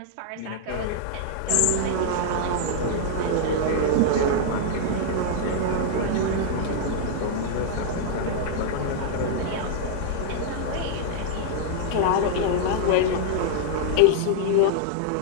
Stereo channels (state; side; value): different; both; correlation -0.01